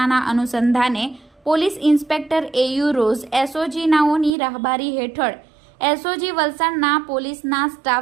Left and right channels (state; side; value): drops out; left; at 4.4 s